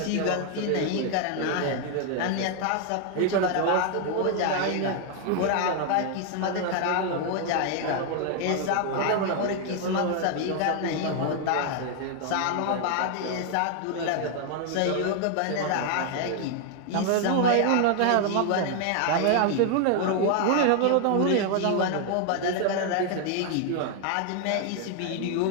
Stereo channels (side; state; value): both; different; correlation 0.00